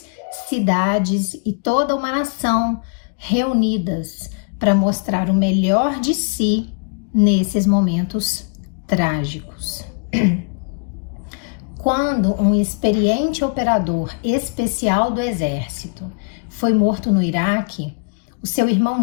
cidades e toda uma nação reunidas para mostrar o melhor de si nesses momentos trágicos. Quando um experiente operador especial do exército foi morto no Iraque, o seu irmão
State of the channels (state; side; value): quieter; right; 36.5 dB